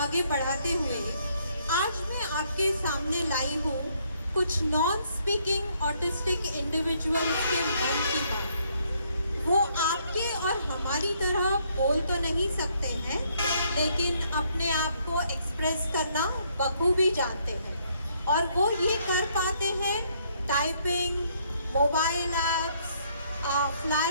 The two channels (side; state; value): both; inverted; correlation -0.69